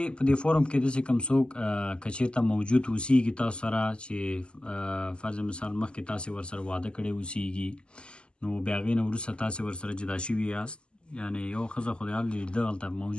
په دې فورم کې داسې کوم څوک که چېرته موجود اوسیږي تاسو سره چې فرض مثال مخکې تاسې ورسره واده کړی اوسیږي نو بیا هغې نه وروسته تاسې ورسره جدا شوي یاست یعنې یو ښځه خو د حال دلته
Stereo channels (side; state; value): right; late; 0.050 ms